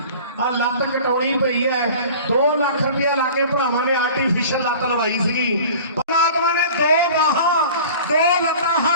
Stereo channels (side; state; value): both; inverted; correlation -0.42